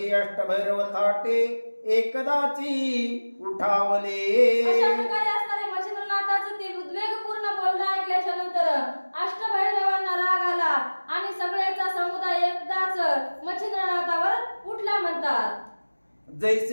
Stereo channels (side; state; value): both; inverted; correlation -1.00